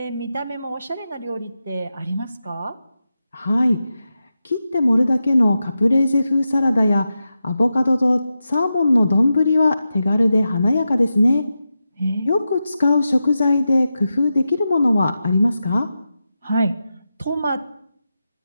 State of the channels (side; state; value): both; inverted; correlation -0.90